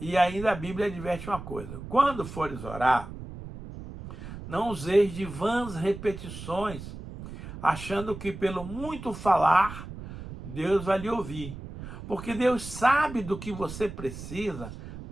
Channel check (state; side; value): noise; right; rumble, 11 dB below the sound